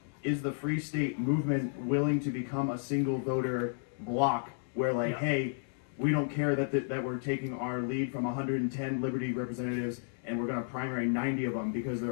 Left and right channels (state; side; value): silent; right; digital silence